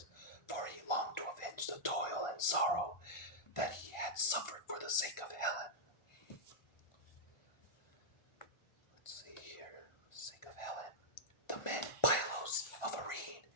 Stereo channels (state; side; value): late; right; 1.4 ms